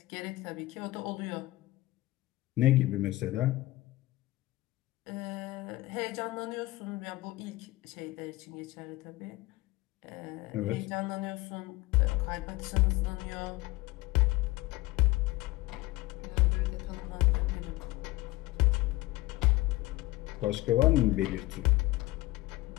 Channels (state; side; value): quieter; right; 19.3 dB